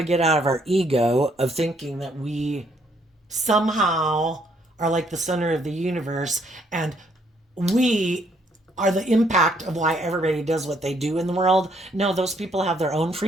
get out of our ego of thinking that we somehow are like the center of the universe and we are the impact of why everybody does what they do in the world. No, those people have their own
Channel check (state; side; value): normal; both; correlation 0.69